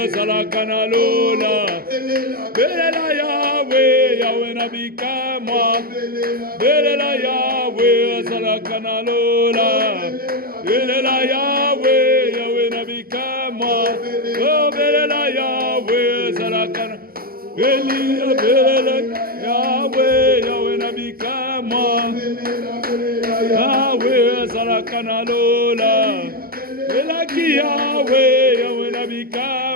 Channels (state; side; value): late; left; 0.43 ms